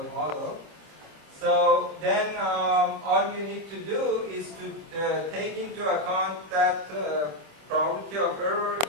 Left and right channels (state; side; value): late; left; 25 ms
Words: model. So then all you need to do is to take into account that probability of error